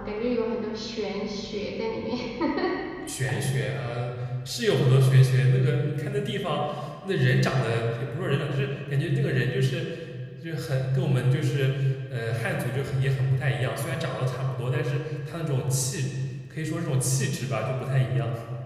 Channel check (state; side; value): identical; both; correlation 1.00